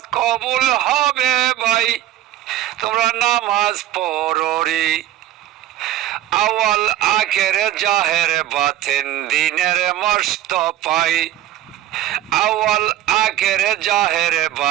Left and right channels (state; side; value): quieter; left; 13.1 dB